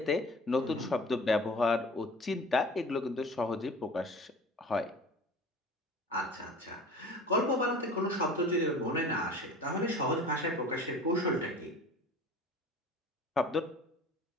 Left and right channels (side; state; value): both; normal; correlation 0.42